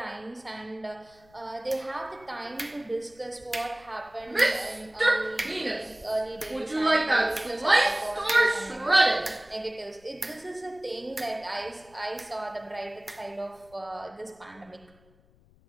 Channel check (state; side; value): noise; left; rumble, 29 dB below the sound